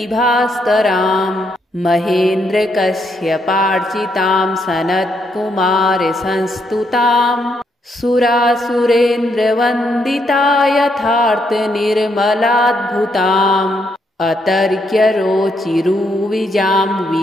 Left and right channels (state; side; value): normal; both; correlation 0.76